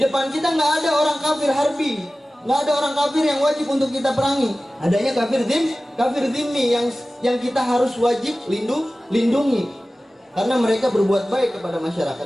depan kita nggak ada orang kafir harbi, nggak ada orang kafir yang wajib untuk kita perangi. Adanya kafir dhimmi yang kita harus wajib lindungi, karena mereka berbuat baik kepada masyarakat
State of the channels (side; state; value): both; normal; correlation 0.96